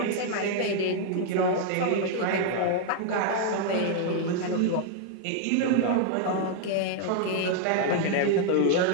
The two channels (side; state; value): both; different; correlation 0.00